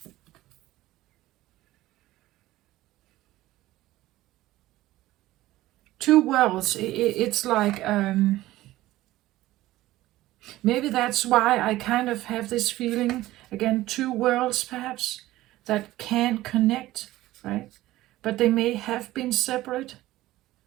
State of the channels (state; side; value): quieter; left; 16.3 dB